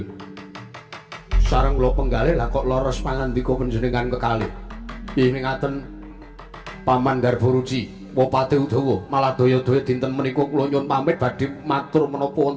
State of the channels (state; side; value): identical; both; correlation 1.00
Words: sareng kula penggalih lah kok leres pangandika panjenengan kekalih. Ing ngaten Paman Garbaruci Wapati Udawa malah daya-daya dinten menika kula nyuwun pamit badhe matur menapa